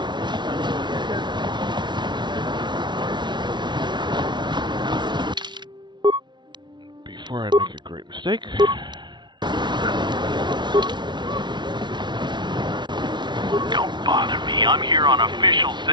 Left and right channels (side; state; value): left; late; 0.22 ms